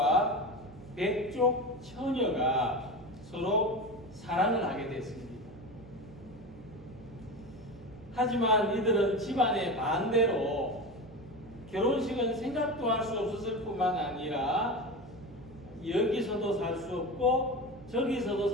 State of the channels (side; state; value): right; noise; hum, 19 dB below the sound